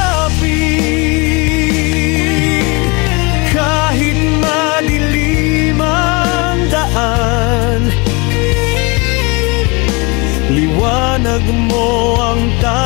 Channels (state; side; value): quieter; right; 28.3 dB